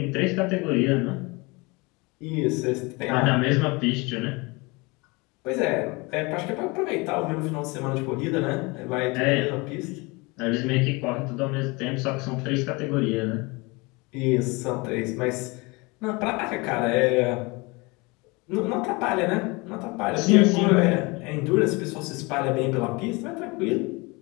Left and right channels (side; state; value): right; quieter; 26.1 dB